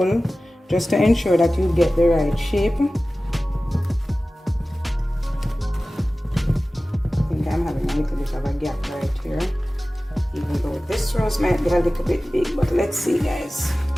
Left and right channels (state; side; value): normal; both; correlation 0.97